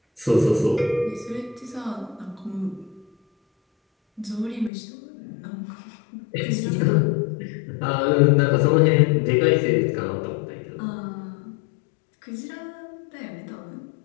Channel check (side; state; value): right; drops out; at 4.7 s